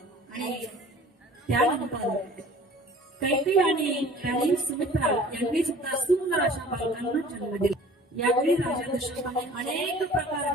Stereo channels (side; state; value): both; normal; correlation 0.48